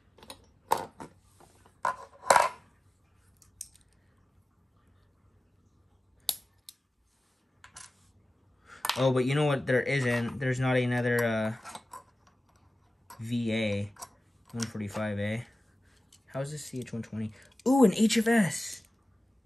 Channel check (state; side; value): normal; both; correlation 0.96